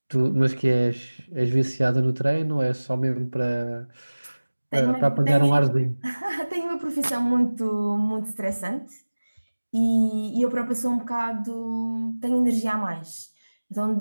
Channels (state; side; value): inverted; both; correlation -1.00